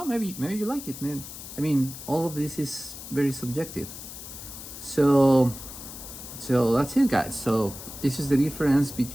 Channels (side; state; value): left; noise; hiss, 12 dB below the sound